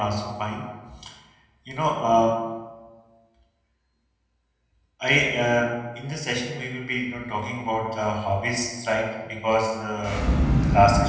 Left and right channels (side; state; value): both; identical; correlation 1.00